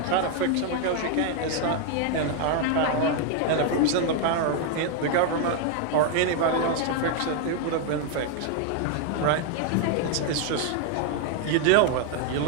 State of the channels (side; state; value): both; different; correlation 0.01